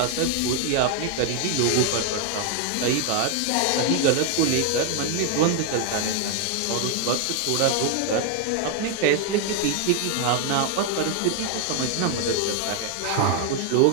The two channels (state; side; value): different; both; correlation 0.00